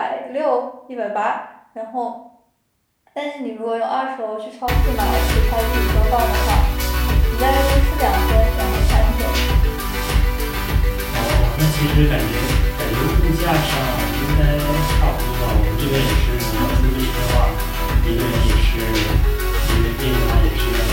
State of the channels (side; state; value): both; identical; correlation 1.00